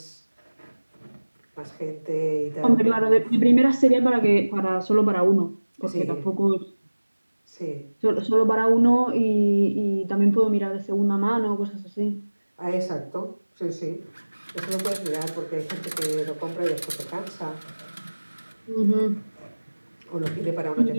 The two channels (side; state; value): both; inverted; correlation -1.00